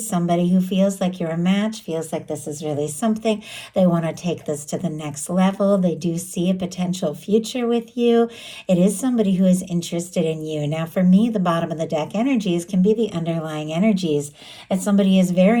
who feels like you're a match, feels like this is really something. They want to take this to the next level. They do see a potential future with you. It is somebody who is interested in you. Now, for me, the bottom of the deck energies can be the underlying energies that somebody is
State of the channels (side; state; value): both; identical; correlation 1.00